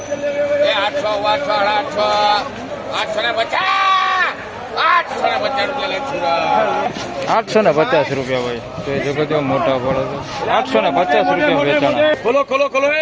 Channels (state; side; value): identical; both; correlation 1.00